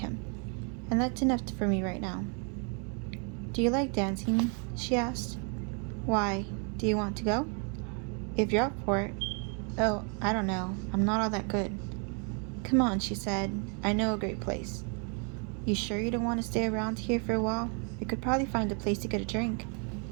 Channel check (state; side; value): quieter; left; 38.4 dB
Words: And that's enough for me right now. Do you like dancing? She asked. Why? Do you want to go? If you're up for it. Oh, I don't know. I'm not all that good. Come on, she said. I know a great place. You sure you don't want to stay around here for a while? We could probably find a place to get a drink.